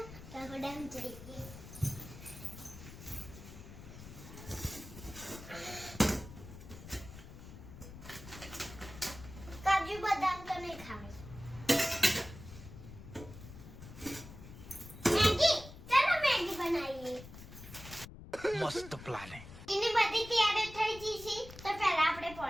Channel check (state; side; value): noise; left; rumble, 15 dB below the sound